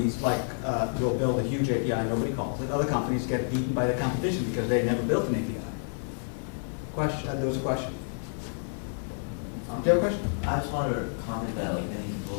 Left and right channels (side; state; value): right; silent; 59 dB below the other